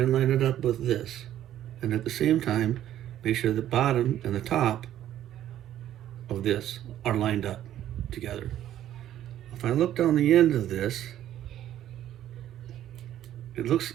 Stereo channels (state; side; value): quieter; left; 11.9 dB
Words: line it up with this. And at the same time, make sure the bottom and the top of this are lined up together. If I look down the end of this, it looks